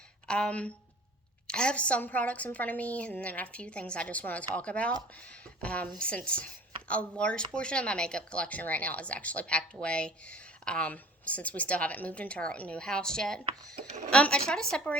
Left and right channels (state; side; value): normal; both; correlation 0.46